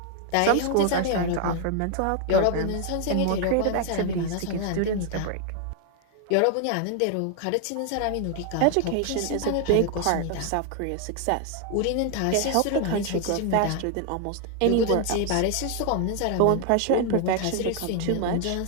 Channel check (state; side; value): different; both; correlation 0.00